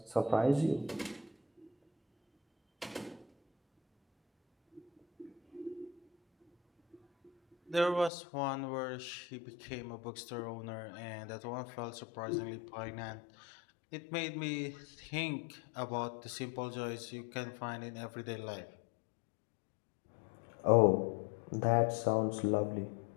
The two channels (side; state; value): right; drops out; at 8.1 s